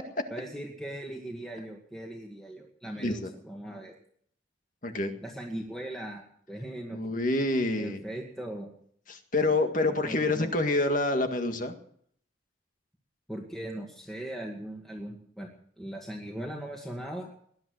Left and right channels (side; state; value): both; normal; correlation 0.39